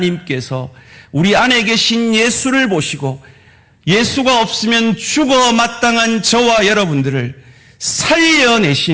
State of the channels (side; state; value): both; identical; correlation 1.00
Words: 우리 안에 계신 예수를 보시고 예수가 없으면 죽어 마땅한 저와 여러분들을